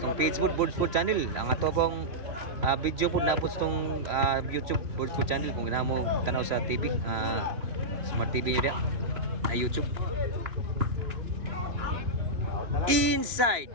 page po Board Sport channel. Ang ato pong video po napot sa YouTube Board Sport channel kung ganahan mo tanaw sa TV, Smart TV niyo dia na YouTube.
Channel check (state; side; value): late; left; 2.9 ms